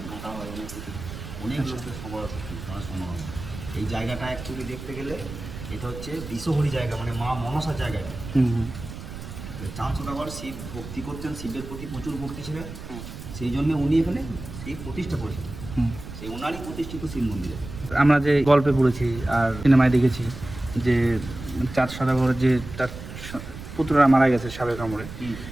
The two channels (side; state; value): right; noise; rumble, 11 dB below the sound